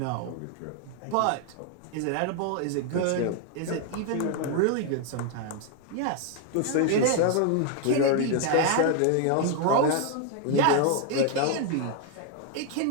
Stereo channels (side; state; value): both; different; correlation 0.00